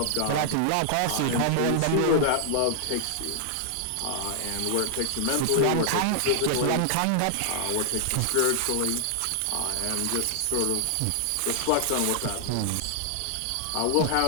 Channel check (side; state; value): both; different; correlation -0.01